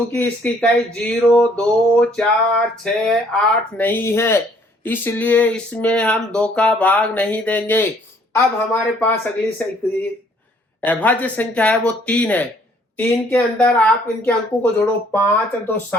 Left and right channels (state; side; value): normal; both; correlation 0.62